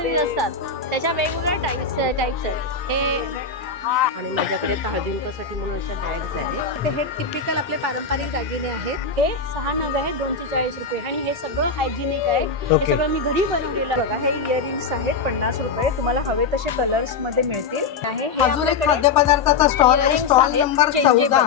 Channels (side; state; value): right; quieter; 5.0 dB